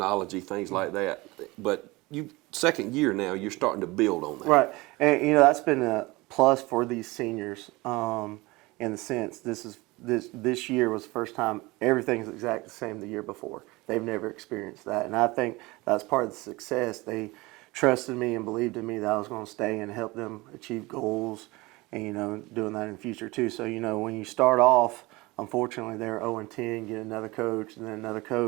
things like that. But second year now, you're starting to build on that. Right. And, that's been a plus for these seniors in the sense this year was the first time everything's exactly the same the year before. They've never experienced that. And I think that's part of the success. They trusted me and believed in me that I was going to stay and help them achieve goals and, doing that in the future too. So, when you start off, unfortunately, they're 0-10, get another coach and then another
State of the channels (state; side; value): quieter; left; 22.3 dB